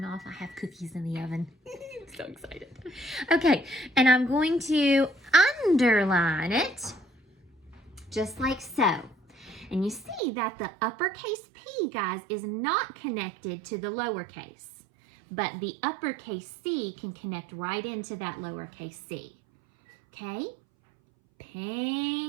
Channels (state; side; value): drops out; left; at 10.2 s